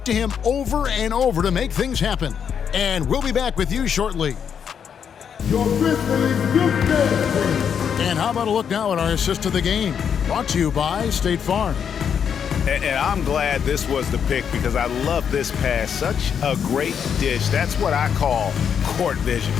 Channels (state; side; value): quieter; right; 7.6 dB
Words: to him over and over to make things happen. And we'll be back with you shortly. Your Grizzlies Youth Dance. And how about a look now at our assist of the game? Brought to you by State Farm. And I'm glad this was the pick because I love this pass. Such a great dish. That's what I call court vision.